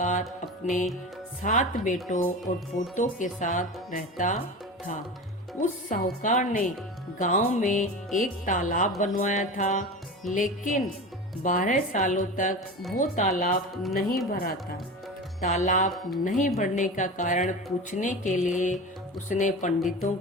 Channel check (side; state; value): both; normal; correlation 0.29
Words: अपने 7 बेटों और पोतों के साथ रहता था। उस साहूकार ने गांव में एक तालाब बनवाया था, लेकिन 12 सालों तक वो तालाब नहीं भरा था। तालाब नहीं भरने का कारण पूछने के लिए उसने पंडितों